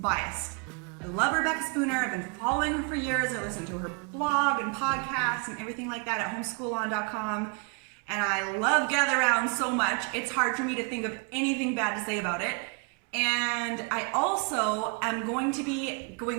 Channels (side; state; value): left; quieter; 34.0 dB